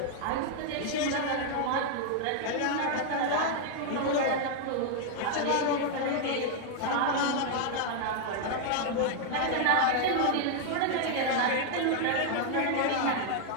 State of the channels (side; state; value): both; different; correlation 0.00